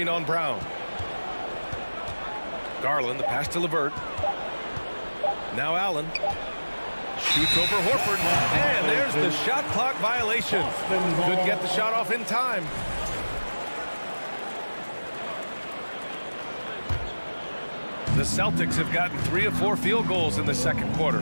on Brown. Garland, the pass to LeVert. Now Allen. Shoots over Horford. And there's the shot clock violation. Couldn't get the shot off in time. The Celtics have gotten 3 of 4 field goals in the second quarter.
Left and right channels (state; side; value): inverted; both; correlation -1.00